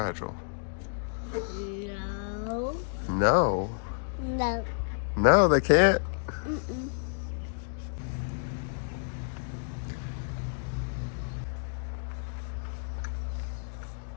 No. No. No. No, they can't. Mm-mm.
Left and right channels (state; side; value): silent; right; digital silence